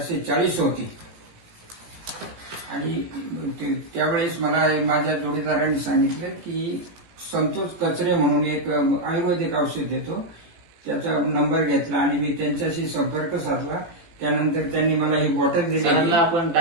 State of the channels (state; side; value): late; left; 18 ms